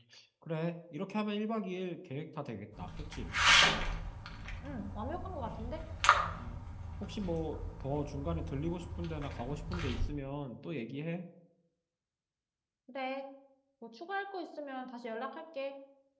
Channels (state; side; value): identical; both; correlation 1.00